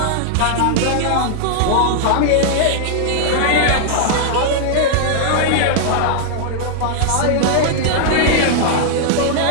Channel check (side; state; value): both; different; correlation -0.01